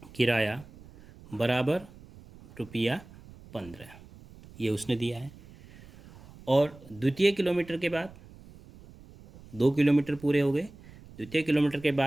किराया बराबर रुपया 15, ये उसने दिया है। और द्वितीय किलोमीटर के बाद 2 किलोमीटर पूरे हो गए, द्वितीय किलोमीटर के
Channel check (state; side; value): noise; right; rumble, 21 dB below the sound